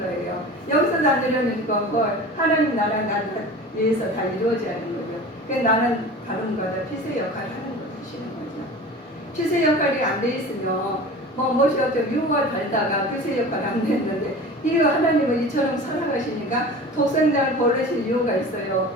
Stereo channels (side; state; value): both; normal; correlation 0.37